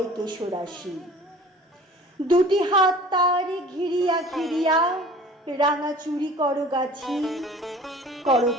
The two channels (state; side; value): normal; both; correlation 0.46